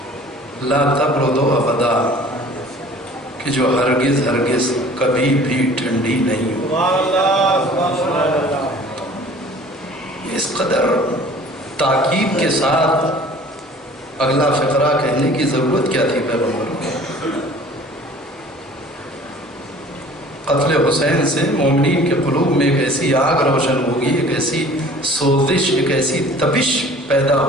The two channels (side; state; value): both; normal; correlation 0.49